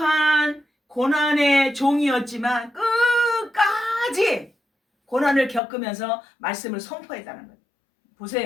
고난의 종이었지만 끝까지 고난을 겪으면서 말씀을 선포했다는 거예요.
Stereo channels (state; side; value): drops out; right; at 5.6 s